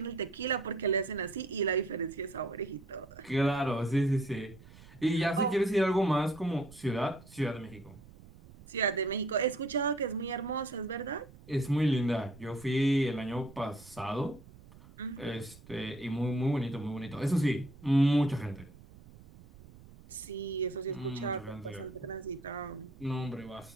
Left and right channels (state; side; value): noise; right; rumble, 20 dB below the sound